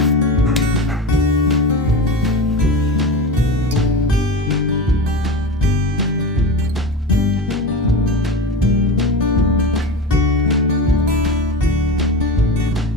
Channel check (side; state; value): both; normal; correlation 0.26